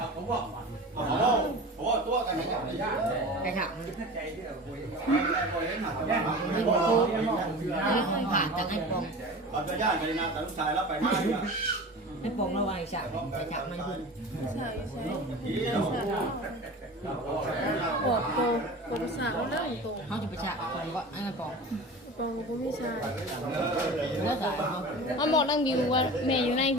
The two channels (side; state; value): both; normal; correlation 0.34